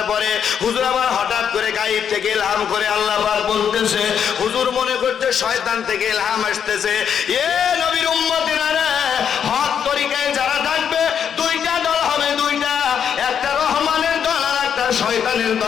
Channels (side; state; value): right; quieter; 8.0 dB